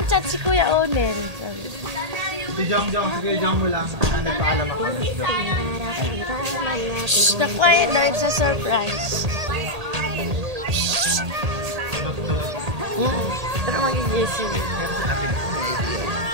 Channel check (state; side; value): late; left; 1.8 ms